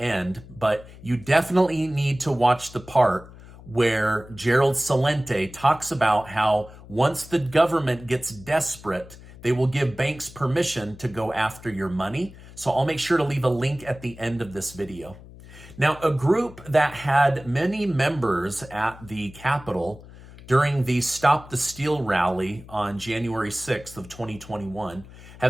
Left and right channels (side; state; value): left; noise; hum, 19 dB below the sound